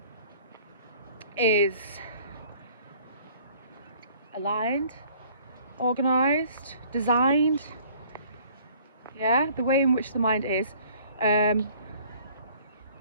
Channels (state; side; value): inverted; both; correlation -0.55